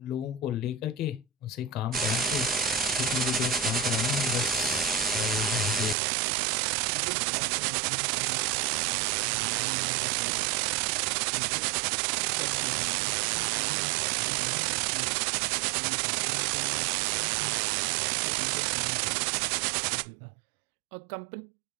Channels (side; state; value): left; drops out; at 6.0 s